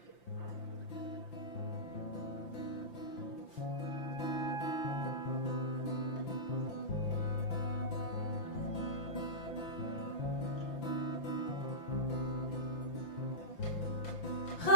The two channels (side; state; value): right; late; 5.8 ms